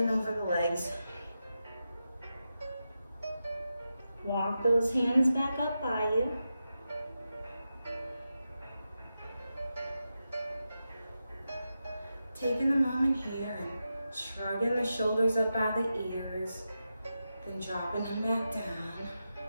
over the legs. Walk those hands back up by you. Taking a moment here and shrugging the shoulders up by the ears, then dropping them back down.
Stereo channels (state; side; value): inverted; both; correlation -0.90